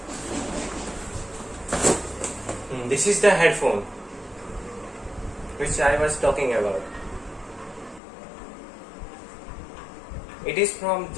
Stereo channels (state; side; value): drops out; right; at 8.0 s